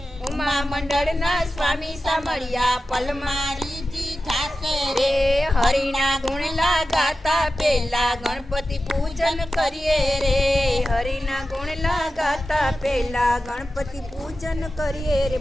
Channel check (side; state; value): both; normal; correlation 0.92